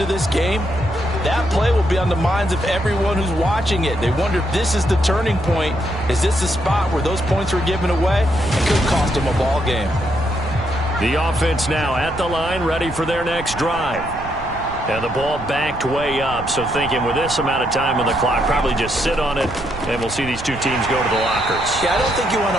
this game, that play will be on the minds of everyone who's watching it. They wonder if this is the turning point. Is this the spot where those points were given away? It could cost them a ball game. The offense now at the line, ready for their next drive. And the ball backed way up, so thinking with this amount of time on the clock, probably just sit on it, and we'll see these two teams go to the lockers. Yeah, I don't think you want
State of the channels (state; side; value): noise; right; rumble, 13 dB below the sound